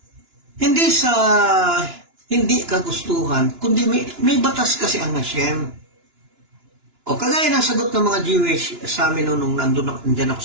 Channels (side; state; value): left; late; 2.9 ms